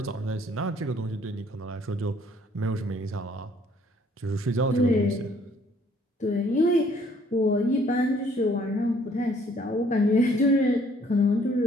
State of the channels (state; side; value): normal; both; correlation 0.62